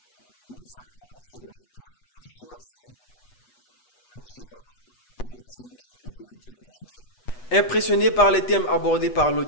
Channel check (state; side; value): late; right; 8.2 ms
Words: nous avons volontairement choisi le genre poétique pour nous communiquer. Impressionné par les thèmes abordés par